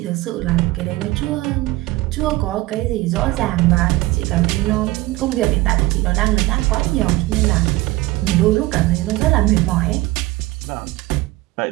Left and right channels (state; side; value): quieter; left; 19.2 dB